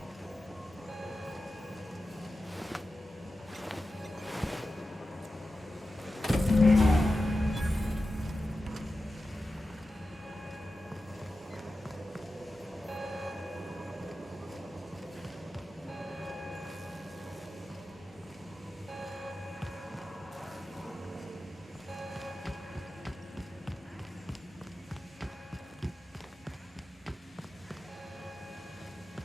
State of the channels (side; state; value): both; normal; correlation 0.93